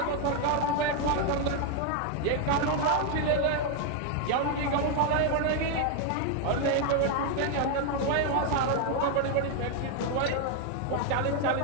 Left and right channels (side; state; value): both; different; correlation 0.01